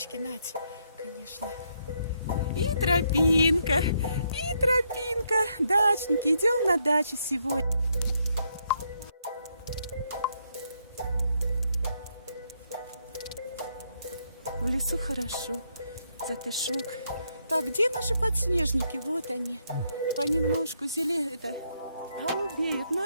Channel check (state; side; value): inverted; both; correlation -0.76